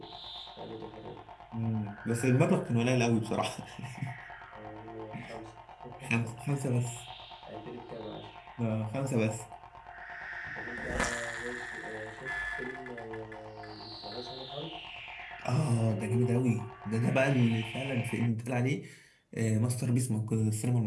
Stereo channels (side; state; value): both; identical; correlation 1.00